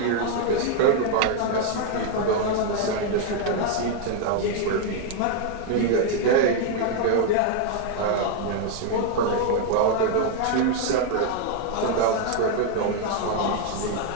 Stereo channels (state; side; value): different; both; correlation 0.00